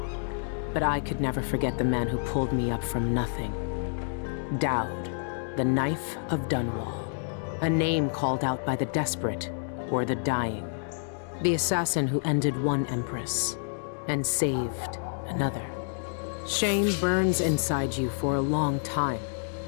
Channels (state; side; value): silent; right; digital silence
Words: But I could never forget the man who pulled me up from nothing. Dowd, the Knife of Dunwall. A name called out by the desperate or the dying. The assassin who ended one empress and saved another. Shame burns inside you for a long time.